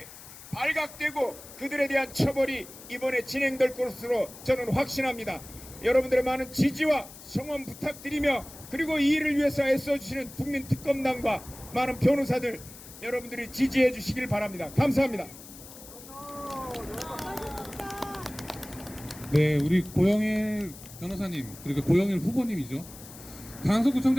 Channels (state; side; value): noise; left; hiss, 17 dB below the sound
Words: 발각되고 그들에 대한 처벌이 이번에 진행될 것으로 저는 확신합니다. 여러분들의 많은 지지와 성원 부탁드리며 그리고 이 일을 위해서 애써주시는 국민특검단과 많은 변호사들 여러분들이 지지해 주시길 바랍니다. 감사합니다. 네, 우리 고영일 변호사님 그리고 고영일 후보님이죠.